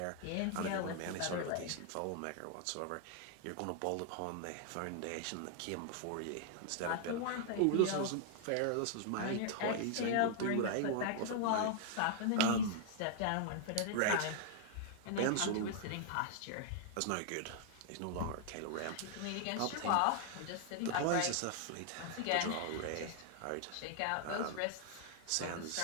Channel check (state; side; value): different; both; correlation 0.00